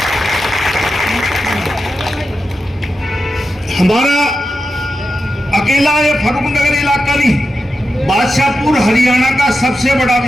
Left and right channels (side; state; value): both; normal; correlation 0.89